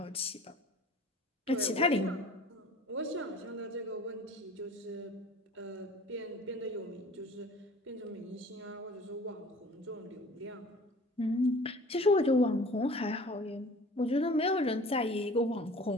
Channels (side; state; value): both; normal; correlation 0.46